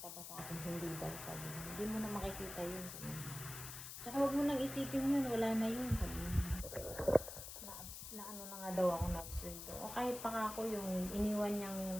ba sa akin, hindi daw, sabi niya. Hindi mo na makikita yun, sabi niya. Tsaka huwag mo nang isipin yun, wala na yun, sabi niya. Na ano na nga daw ako na-absurd. O kahit pa ako yung iniwan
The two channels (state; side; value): noise; left; hiss, 9 dB below the sound